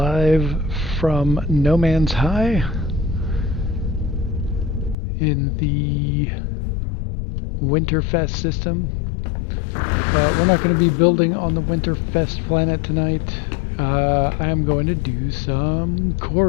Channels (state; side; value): drops out; right; at 5.0 s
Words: from No Man's High in the Winterfest system. But we're not going to be building on the Winterfest planet tonight. I am going to do some